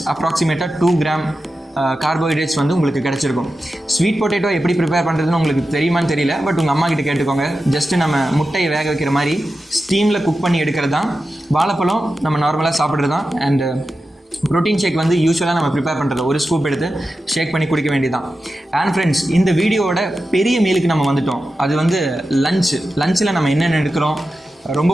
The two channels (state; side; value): normal; both; correlation 0.92